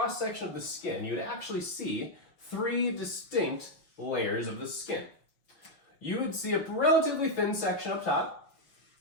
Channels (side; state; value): right; late; 5.9 ms